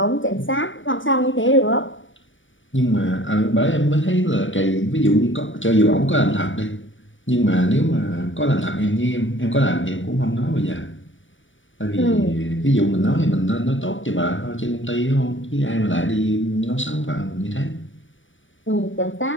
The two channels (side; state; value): right; late; 0.56 ms